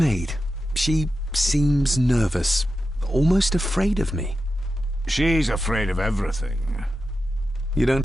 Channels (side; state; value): both; normal; correlation 0.91